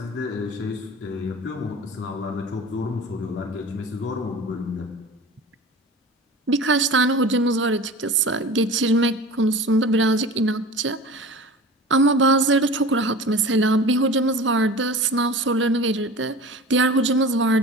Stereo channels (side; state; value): both; normal; correlation 0.37